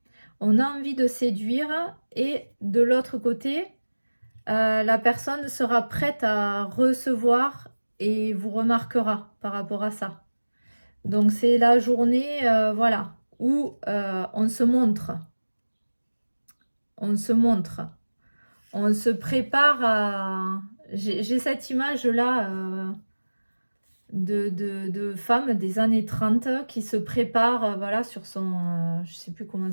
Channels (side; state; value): both; inverted; correlation -1.00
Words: On a envie de séduire et de l'autre côté, la personne sera prête à recevoir et vous remarquera par rapport à ça. Donc c'est la journée, voilà, où on se montre. On se montre. On se prépare à... J'ai cette image-là de femmes des années 30 qui se préparent, voilà, sur son... je sais plus comment